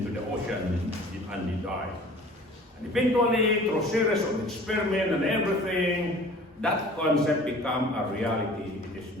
the ocean and they died. And eventually, through series of experiments and everything, that concept became a reality. It is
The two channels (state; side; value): normal; both; correlation 0.47